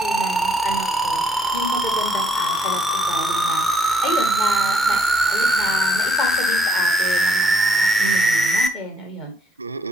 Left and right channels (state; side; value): normal; both; correlation 0.69